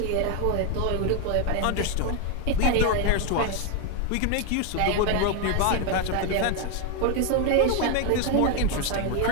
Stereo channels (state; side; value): different; both; correlation 0.01